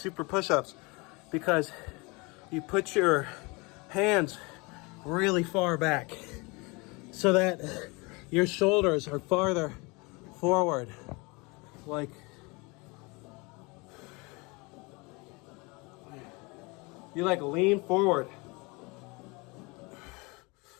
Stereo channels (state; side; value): quieter; right; 27.2 dB